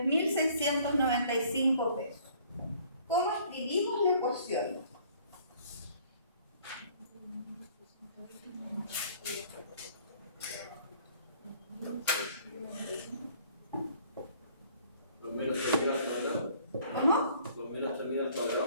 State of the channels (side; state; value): both; inverted; correlation -0.57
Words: pesos. ¿Cómo escribimos la ecuación?